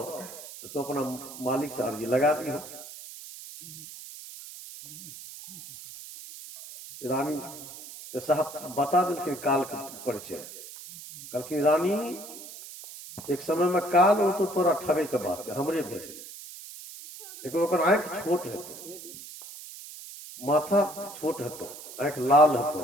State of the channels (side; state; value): right; noise; hiss, 14 dB below the sound